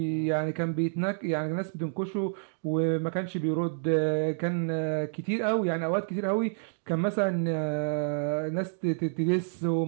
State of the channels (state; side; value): silent; left; digital silence